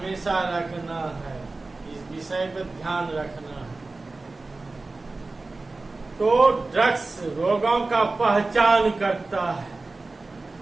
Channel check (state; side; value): quieter; left; 3.4 dB